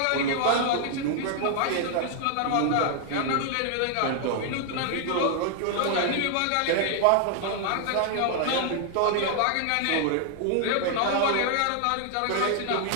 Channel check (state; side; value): different; both; correlation 0.00